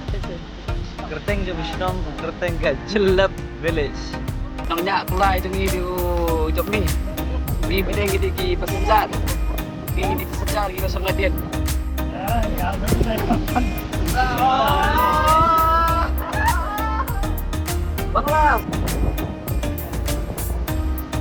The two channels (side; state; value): both; identical; correlation 1.00